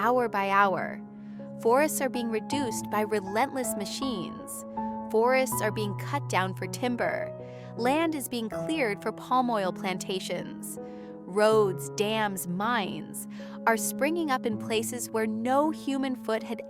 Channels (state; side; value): identical; both; correlation 1.00